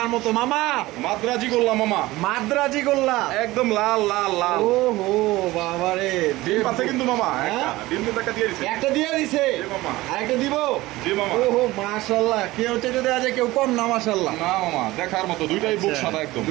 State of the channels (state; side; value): quieter; left; 18.6 dB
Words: মতো মামা মাদ্রাজি গোল্লা মামা, মাদ্রাজি গোল্লা একদম লাল লাল লাল। ওহো বাবারে ডিম আছে কিন্তু মামা, হ্যাঁ? ডিম কিন্তু একটা দিয়ে দিছে। একটা দিয়ে দিছে, জি মামা। আরেকটা দিব। জি মামা। ওহো মাশাআল্লাহ, কেউ চাইতে দেওয়া যায়, কেউ কম না মাশাআল্লাহ। না মামা দেখার মতো, দুইটাই বুক সাদা একদম।